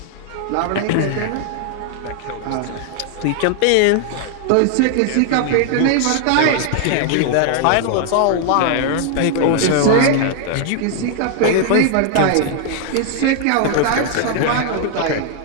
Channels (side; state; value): both; different; correlation 0.00